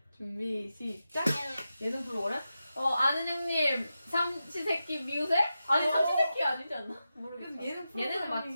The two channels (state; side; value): inverted; both; correlation -0.91